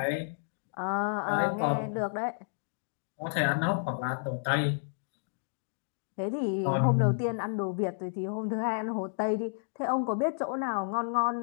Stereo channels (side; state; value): right; silent; digital silence